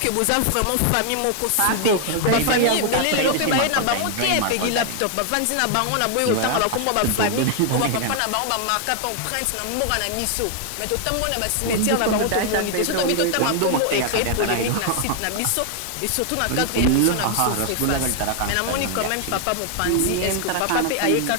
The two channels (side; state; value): both; different; correlation 0.00